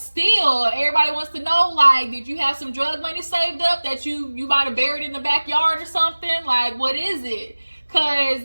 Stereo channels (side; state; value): both; inverted; correlation -1.00